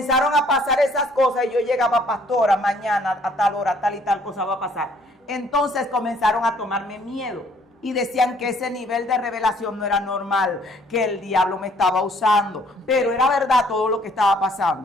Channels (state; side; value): normal; both; correlation 0.61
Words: a pasar esas cosas y yo llegaba, pastora, mañana a tal hora, tal y tal cosa va a pasar. Entonces comenzaron a tomarme miedo y decían que ese nivel de revelación no era normal, que el diablo me estaba usando, pero era verdad todo lo que estaba